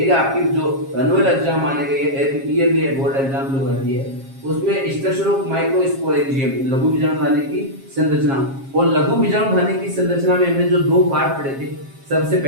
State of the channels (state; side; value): late; left; 7.4 ms